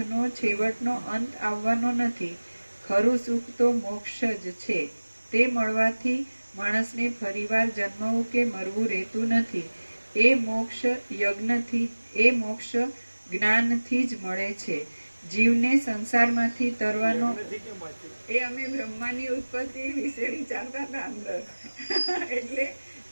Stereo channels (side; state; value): both; inverted; correlation -1.00